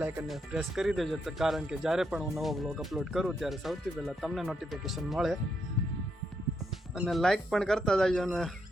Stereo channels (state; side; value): normal; both; correlation 0.79